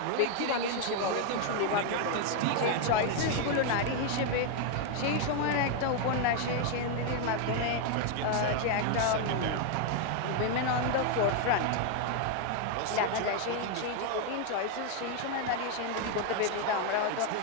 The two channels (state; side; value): different; both; correlation 0.01